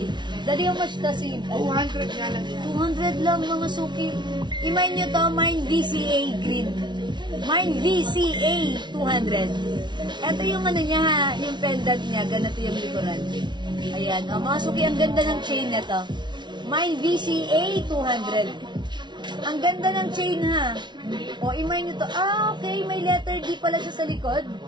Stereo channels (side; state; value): left; late; 0.22 ms